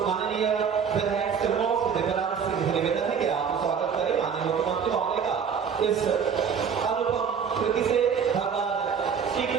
माननीय विधायक सिरमौर से दिव्यांग सिंह से निवेदन है कि आप स्वागत करें माननीय मुख्यमंत्री महोदय का। इस अनुपम कृति से भगवान श्री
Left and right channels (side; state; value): left; quieter; 6.8 dB